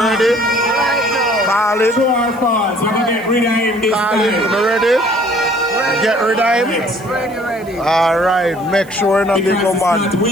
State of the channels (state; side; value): noise; right; hiss, 25 dB below the sound